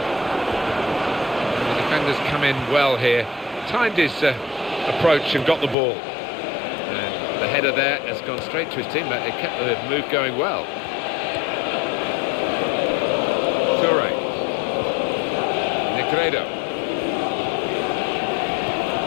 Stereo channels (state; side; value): drops out; right; at 5.8 s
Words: The defenders come in well here. Timed his approach and got the ball. And the header there has gone straight to his teammate. They kept the move going well. Toure. Negredo.